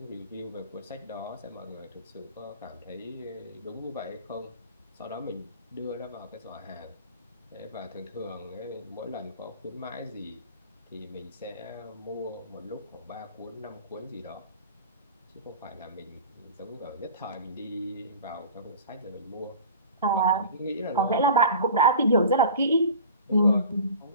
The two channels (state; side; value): inverted; both; correlation -0.40